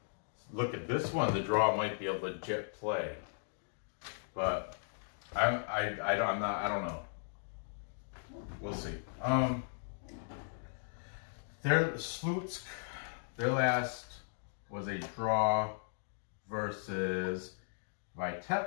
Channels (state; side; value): silent; right; digital silence